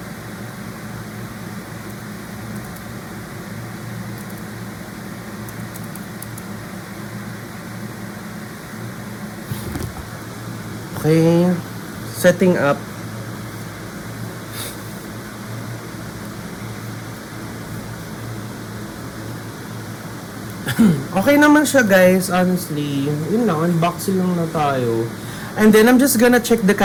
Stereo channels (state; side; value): identical; both; correlation 1.00